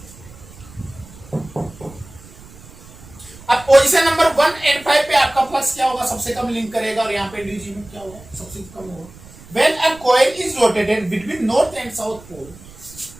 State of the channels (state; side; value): noise; right; rumble, 20 dB below the sound